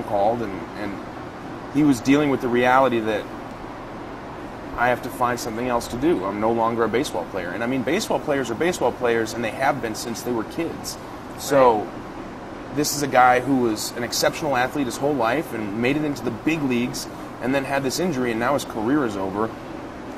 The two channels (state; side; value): identical; both; correlation 1.00